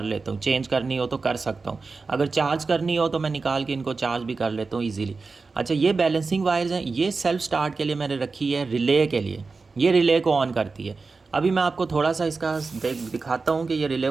लेता हूँ। चेंज करनी हो तो कर सकता हूँ, अगर चार्ज करनी हो तो मैं निकाल के इनको चार्ज भी कर लेता हूँ ईज़िली। अच्छा, ये बैलेंसिंग वायर्स हैं, ये सेल्फ़ स्टार्ट के लिए मैंने रखी है, रिले के लिए। ये रिले को ऑन करती है। अभी मैं आपको थोड़ा सा इसका दिखाता हूँ कि ये रिले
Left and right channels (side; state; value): left; quieter; 4.2 dB